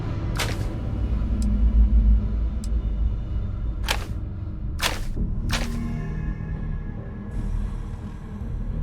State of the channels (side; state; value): both; identical; correlation 1.00